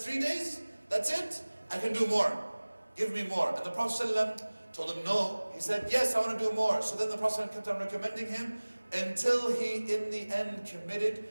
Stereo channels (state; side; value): inverted; both; correlation -1.00